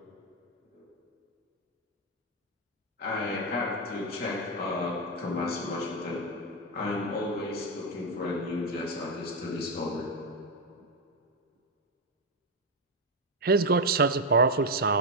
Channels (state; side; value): normal; both; correlation 0.05